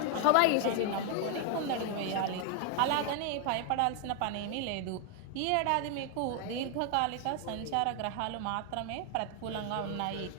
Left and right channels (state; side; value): different; both; correlation 0.00